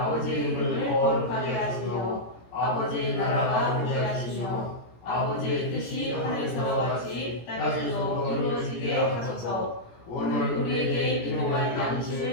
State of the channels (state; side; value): late; right; 17 ms